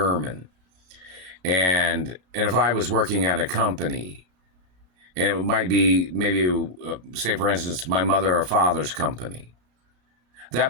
and if I was working at a company, and it might be maybe, say, for instance, my mother or father's company,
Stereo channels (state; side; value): late; left; 33 ms